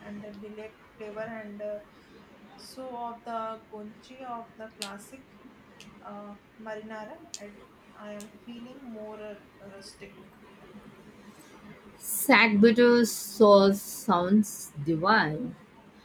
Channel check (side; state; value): both; identical; correlation 1.00